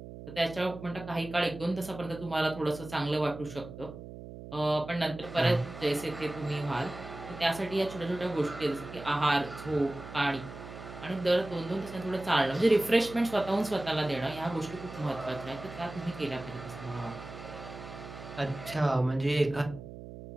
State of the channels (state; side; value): noise; right; hum, 13 dB below the sound